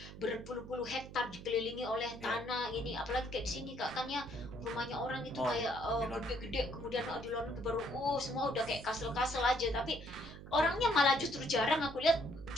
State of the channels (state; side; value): noise; right; hum, 14 dB below the sound